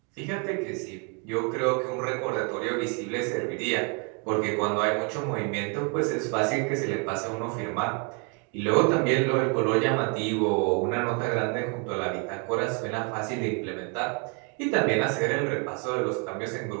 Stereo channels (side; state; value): left; quieter; 35.4 dB